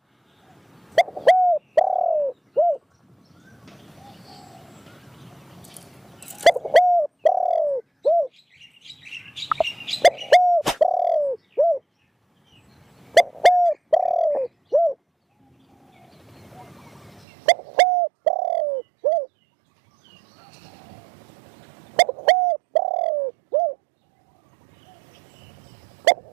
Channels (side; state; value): left; drops out; at 17.2 s